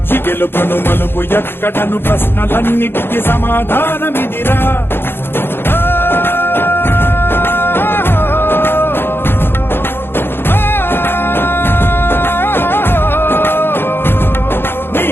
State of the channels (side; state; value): right; late; 0.11 ms